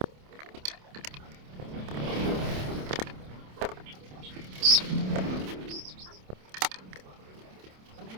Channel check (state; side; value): late; left; 27 ms